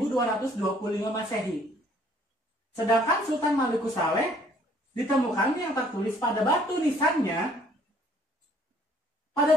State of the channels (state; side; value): normal; both; correlation 0.60